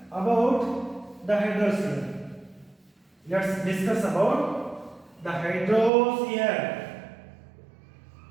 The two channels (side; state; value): left; drops out; at 5.9 s